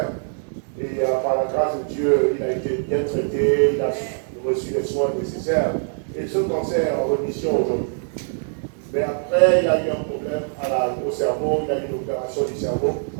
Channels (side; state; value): left; silent; digital silence